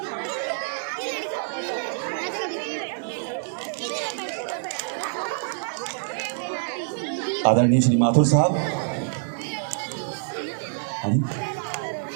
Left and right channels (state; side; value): silent; left; digital silence